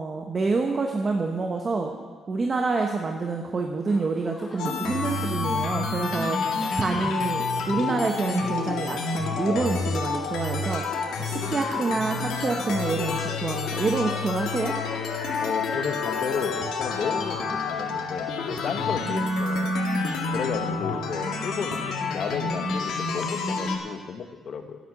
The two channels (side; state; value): both; normal; correlation 0.72